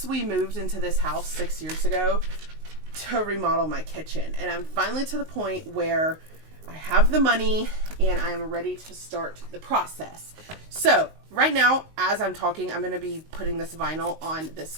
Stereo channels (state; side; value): late; left; 19 ms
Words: we moved into this house 6 years ago to remodel my kitchen, and I'm finally to the point where I have the money and I'm ready to start the process. So right now, as I'm talking, I'm going to be putting this vinyl on this